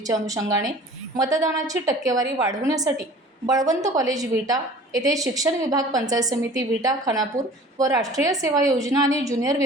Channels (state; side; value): normal; both; correlation 0.46